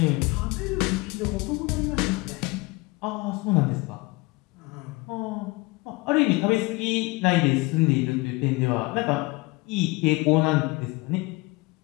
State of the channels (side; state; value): right; quieter; 24.1 dB